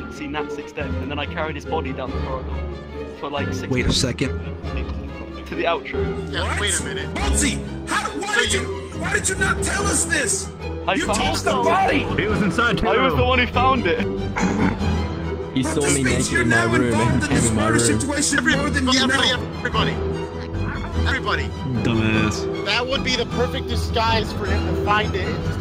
to see Natsix dead, and then I carried his body down the corridor for like 6 Wait a minutes second. to the outro. Yeah, wait a minute. Boatsy, why did you not tell us this? I You found tossed the body! He was inside True I was Gnome. the one who found it. He saw me naked in my room and came in my room. Everybody. Dumbass. That would be the perfect disguise for him to find it and just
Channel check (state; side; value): identical; both; correlation 1.00